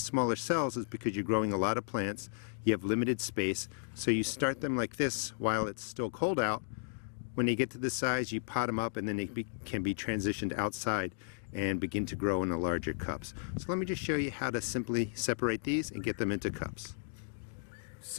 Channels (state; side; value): silent; right; digital silence